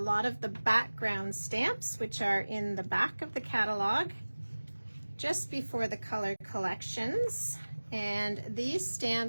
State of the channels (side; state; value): both; inverted; correlation -1.00